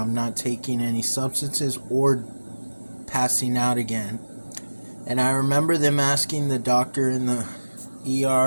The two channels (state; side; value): inverted; both; correlation -1.00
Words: not taking any substances or passing out again. And I remember them asking the doctor in the